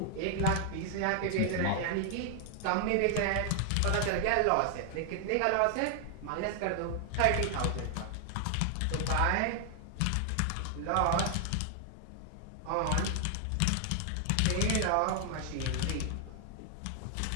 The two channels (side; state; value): both; different; correlation 0.00